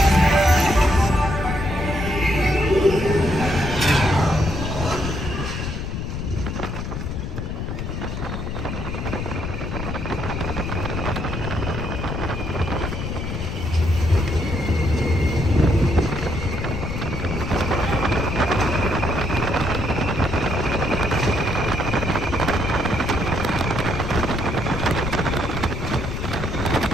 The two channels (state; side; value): noise; left; rumble, 4 dB below the sound